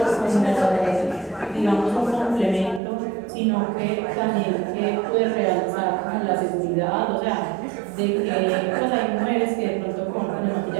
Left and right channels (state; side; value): drops out; left; at 2.8 s